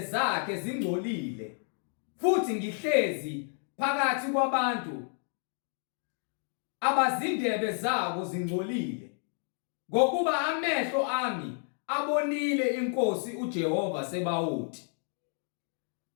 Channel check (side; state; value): right; silent; 57 dB below the other